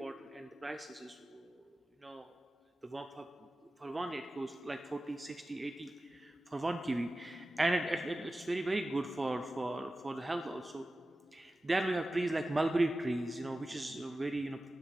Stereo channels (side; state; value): both; normal; correlation 0.95